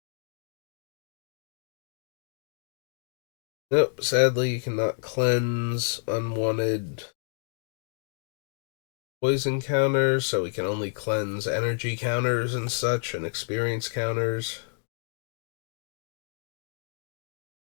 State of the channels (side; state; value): right; silent; digital silence